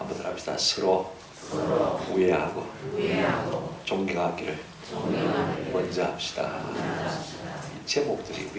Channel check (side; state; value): both; identical; correlation 1.00